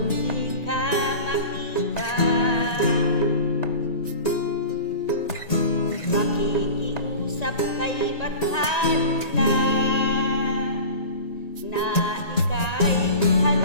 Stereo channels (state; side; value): late; right; 1.9 ms